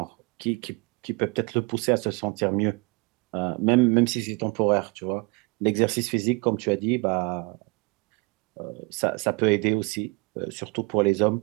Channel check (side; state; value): left; quieter; 28.4 dB